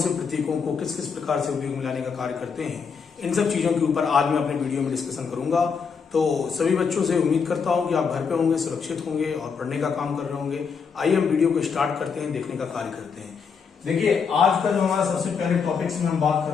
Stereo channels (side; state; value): right; quieter; 5.9 dB